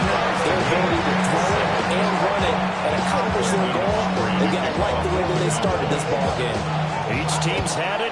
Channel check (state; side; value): identical; both; correlation 1.00